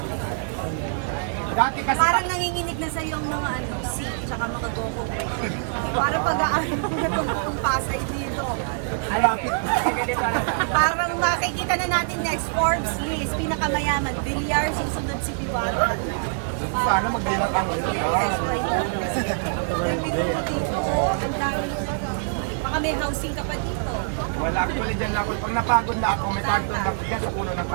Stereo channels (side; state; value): left; silent; digital silence